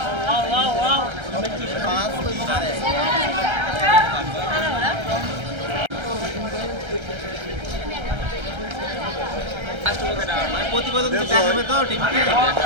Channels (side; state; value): left; late; 1.3 ms